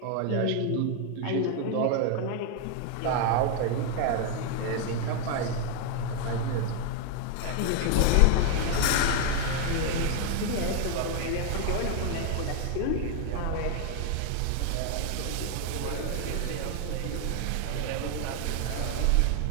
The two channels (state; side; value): different; both; correlation 0.00